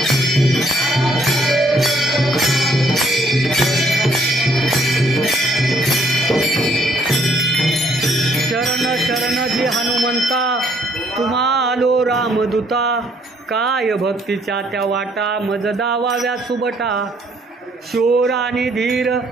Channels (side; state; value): both; normal; correlation 0.66